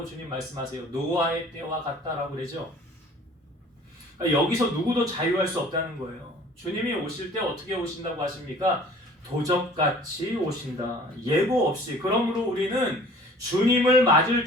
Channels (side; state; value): both; normal; correlation 0.49